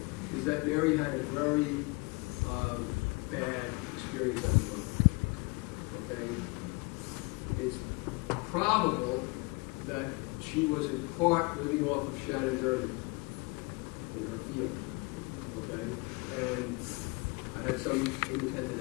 is that Mary had a very bad experience as a mother. Okay? It's probable that she was in part living off of Shannon's earnings in her field. Okay? And I had some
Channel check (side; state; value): right; quieter; 28.3 dB